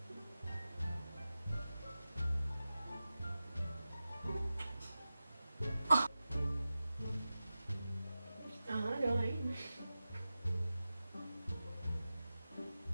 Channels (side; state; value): both; inverted; correlation -0.94